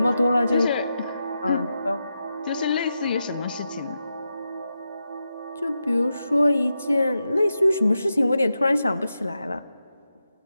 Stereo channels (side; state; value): both; inverted; correlation -0.88